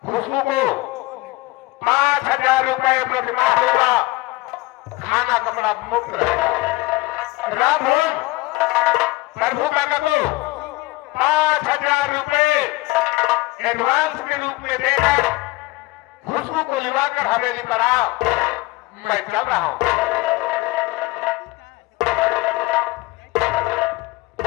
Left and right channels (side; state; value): right; quieter; 21.0 dB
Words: खुशबू को 5,000 रुपए प्रतिमाह देगा, खाना कपड़ा मुफ्त रहेगा। राम भोज प्रभु काका को 5,000 रुपए एडवांस के रूप में देकर खुशबू को लिवाकर हवेली पर आओ, मैं चल रहा हूं।